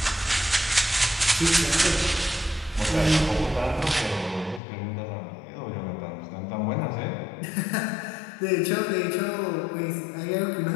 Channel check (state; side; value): drops out; right; at 4.6 s